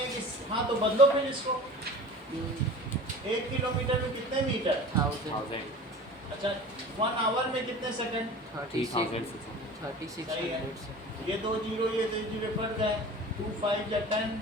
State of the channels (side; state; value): both; normal; correlation 0.39